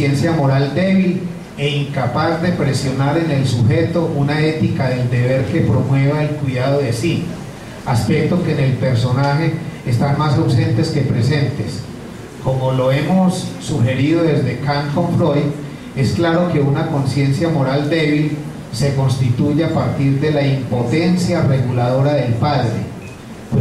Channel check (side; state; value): both; identical; correlation 1.00